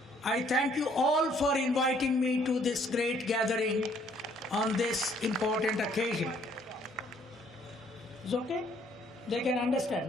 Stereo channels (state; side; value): normal; both; correlation 0.63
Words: I thank you all for inviting me to this great gathering on this important occasion. Is okay? They can understand,